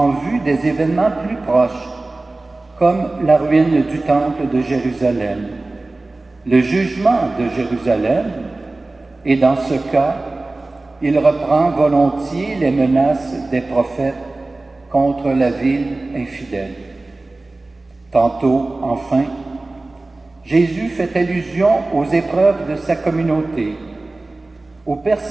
vue des événements plus proches, comme la ruine du temple de Jérusalem, le jugement de Jérusalem, et dans ce cas, il reprend volontiers les menaces des prophètes contre la ville infidèle. Tantôt, enfin, Jésus fait allusion aux épreuves de sa communauté, aux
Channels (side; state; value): left; quieter; 3.1 dB